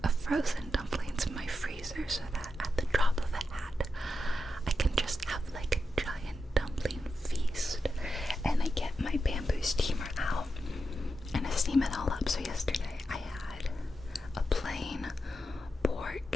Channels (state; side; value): normal; both; correlation 0.88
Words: of frozen dumplings in my freezer so that at the drop of a hat, I can just have like a giant dumpling feast. And I get my bamboo steamer out and I steam it all up. So yesterday I had a plain